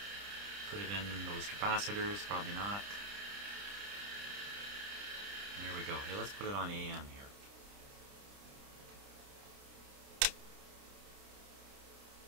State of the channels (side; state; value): left; late; 30 ms